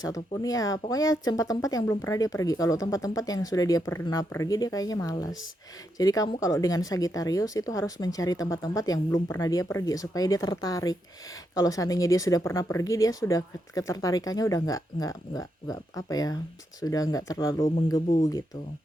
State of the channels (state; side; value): normal; both; correlation 0.82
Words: ataupun ya pokoknya tempat-tempat yang belum pernah dia pergi. Kalau tempat-tempat yang sudah dia pernah pergi dia kayaknya malas. Jadi kamu kalau dengan Sagittarius itu harus mencari tempat-tempat yang belum pernah dia pergi supaya dia tertarik. Kalau seandainya dia sudah pernah pergi, dia sudah ketertarikannya udah nggak apa ya, sudah nggak terlalu menggebu gitu